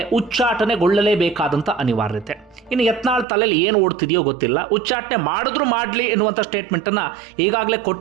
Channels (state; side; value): drops out; left; at 3.2 s